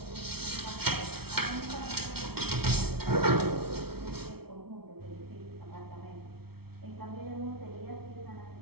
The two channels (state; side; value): late; left; 0.95 ms